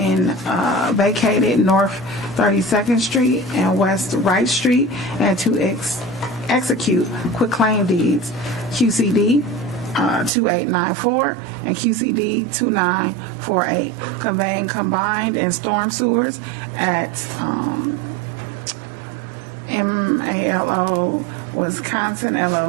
vacated North 32nd Street and West Wright Street, and to execute quitclaim deeds, QCD 2894 and QCD 2948, conveying combined and storm sewers at MALO Wisconsin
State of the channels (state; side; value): drops out; left; at 10.3 s